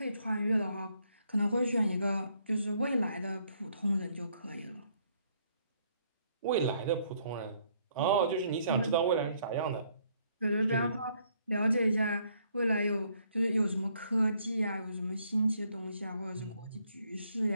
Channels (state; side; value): inverted; both; correlation -0.69